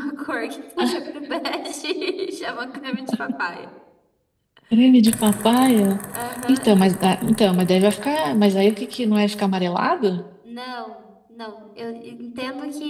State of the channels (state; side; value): identical; both; correlation 1.00